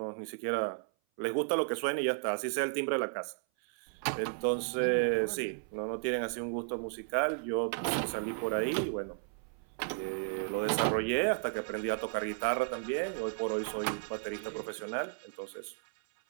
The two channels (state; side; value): silent; left; 55 dB below the other